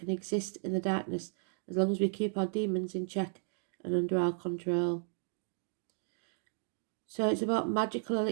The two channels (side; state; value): left; silent; digital silence